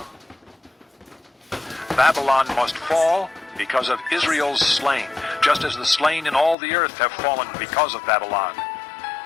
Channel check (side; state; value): right; drops out; at 6.6 s